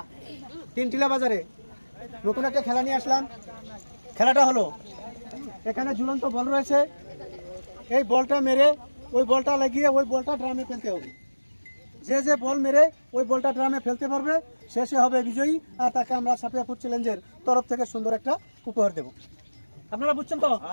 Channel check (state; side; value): inverted; both; correlation -1.00